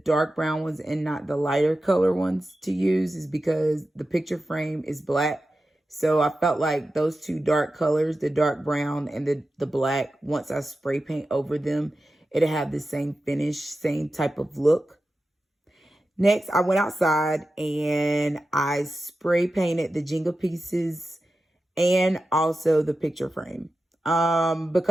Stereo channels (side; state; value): both; normal; correlation 0.92